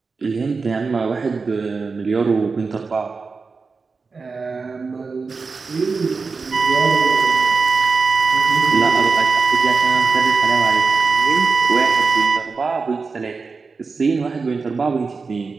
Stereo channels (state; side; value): quieter; left; 4.5 dB